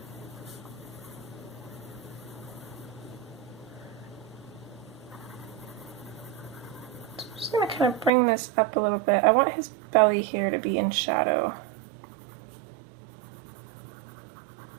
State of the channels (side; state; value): left; drops out; at 8.1 s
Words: So I'm just going to kind of bring this up a little bit. I want his belly here to be in shadow.